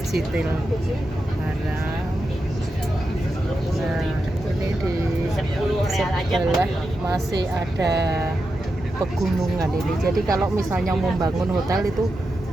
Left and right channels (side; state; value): both; normal; correlation 0.89